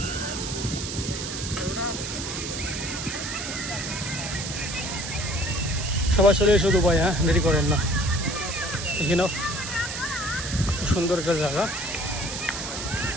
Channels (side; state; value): right; noise; hiss, 6 dB below the sound